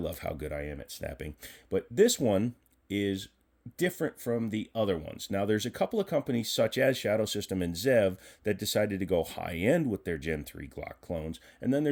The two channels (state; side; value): identical; both; correlation 1.00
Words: how good I am at snapping. But this one is different from the other ones. Now, there's a couple of companies such as Shadow Systems and Zev that decided to go high-end with their Gen 3 Glock clones, and then